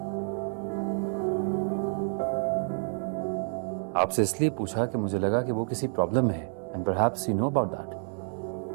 आपसे इसलिए पूछा कि मुझे लगा कि वो किसी प्रॉब्लम में है, and perhaps you know about that.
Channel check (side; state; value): left; silent; digital silence